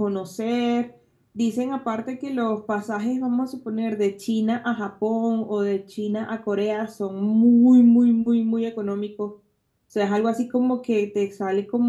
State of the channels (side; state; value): both; identical; correlation 1.00